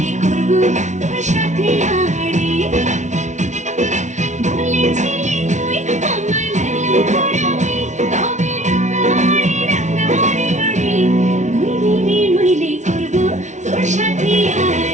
করবো তোর সাথে আড়ি। বলেছিলি তুই আমার লালা পরাবি, তবে রাঙাহারি রাঙাহারি বাড়ি, নইলে রে নইলে করবো তোর সাথে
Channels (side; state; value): left; late; 0.35 ms